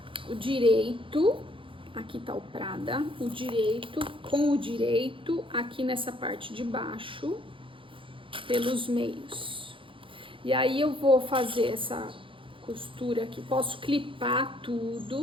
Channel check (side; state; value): left; late; 0.25 ms